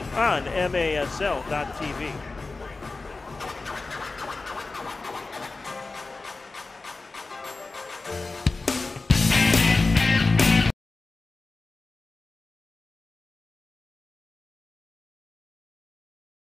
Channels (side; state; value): right; quieter; 3.7 dB